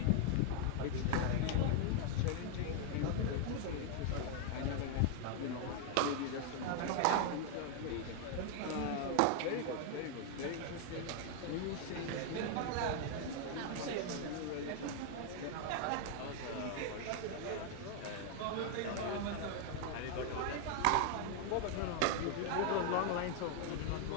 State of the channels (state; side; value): different; both; correlation 0.00